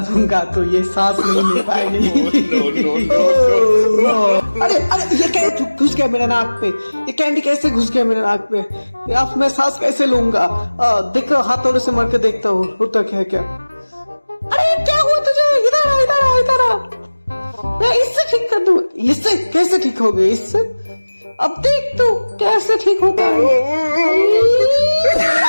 दूंगा तो ये सांस नहीं ले पाएगी। अरे अरे ये क्या घुस गया मेरे नाक पे, ये कैंडी कैसे घुस गया मेरे नाक पे, अब मैं सांस कैसे लूंगा? देखो हाथोड़े से मार के देखता हूँ होता क्या क्या। अरे क्या हुआ तुझे? इधर आ इधर आ इधर आ, मैं इससे ठीक कर दूं। इससे कैसे ठीक हो गए? इससे अब देख तू कैसे ठीक होता है।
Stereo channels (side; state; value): both; inverted; correlation -1.00